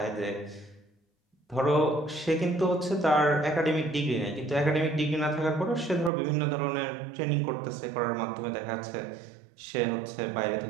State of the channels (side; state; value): left; drops out; at 6.1 s